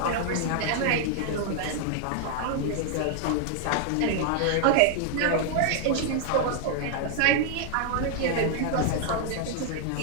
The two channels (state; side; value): different; both; correlation 0.00